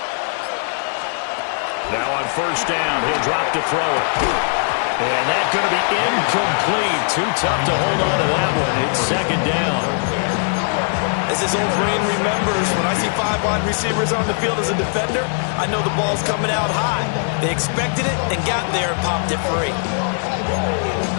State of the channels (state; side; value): silent; right; 66 dB below the other